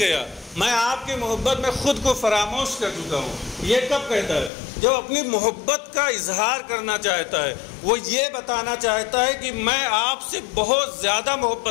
میں آپ کی محبت میں خود کو فراموش کر چکا ہوں۔ یہ کب کہتا ہے؟ جب اپنی محبت کا اظہار کرنا چاہتا ہے، وہ یہ بتانا چاہتا ہے کہ میں آپ سے بہت زیادہ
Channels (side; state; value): right; drops out; at 4.5 s